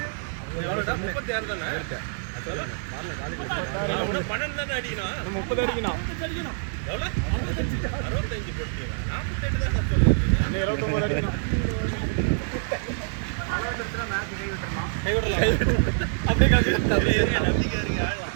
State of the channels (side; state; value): left; silent; digital silence